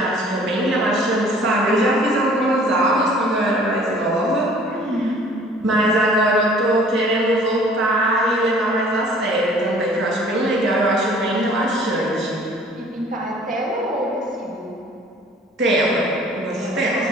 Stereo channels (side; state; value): both; normal; correlation 0.52